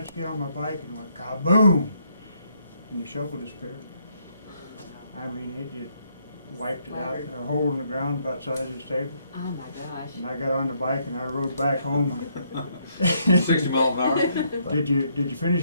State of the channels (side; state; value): both; inverted; correlation -0.72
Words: get on my bike, and went kaboom! And the shovel disappeared. I mean, it just wiped it out, a hole in the ground about the size of this table. Oh my gosh. And I got on the bike and I rode back home. 60 miles an hour. Did you finish